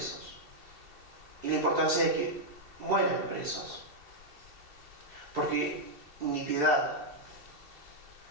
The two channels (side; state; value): left; late; 2.7 ms